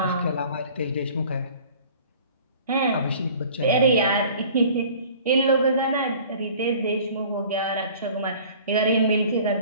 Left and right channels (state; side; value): inverted; both; correlation -0.48